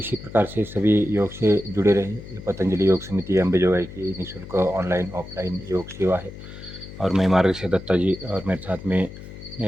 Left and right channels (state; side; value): noise; left; hum, 14 dB below the sound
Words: प्रकार से सभी योग से जुड़े रहें। पतंजलि योग समिति अंबेजोगाई की निःशुल्क ऑनलाइन ऑफलाइन योग सेवा है। और मैं मार्गशीर दत्ता जी और मेरे साथ में